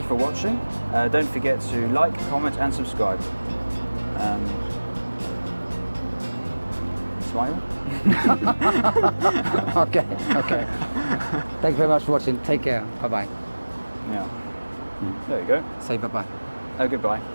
for watching. Don't forget to like, comment, and subscribe. Smile. Okay. Thank you very much for watching. Take care. Bye-bye. Yeah. There you go. Say bye-bye. Oh, goodbye.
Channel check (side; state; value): both; inverted; correlation -1.00